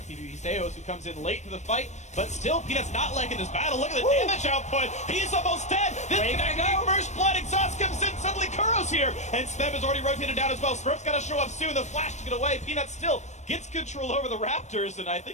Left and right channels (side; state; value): right; late; 0.34 ms